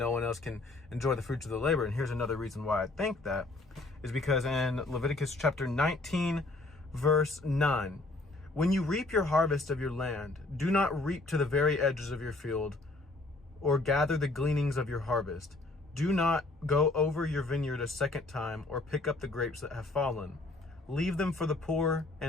one else can enjoy the fruits of the labor. And here's another reason why I think that is because in Leviticus chapter 19, verse 9, when you reap your harvest of your land, do not reap to the very edges of your field or gather the gleanings of your harvest. Do not go over your vineyard a second time or pick up the grapes that have fallen. Leave them for the poor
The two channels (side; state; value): right; quieter; 3.0 dB